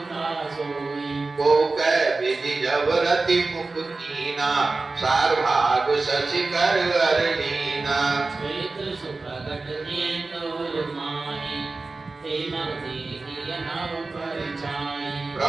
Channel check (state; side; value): quieter; left; 3.6 dB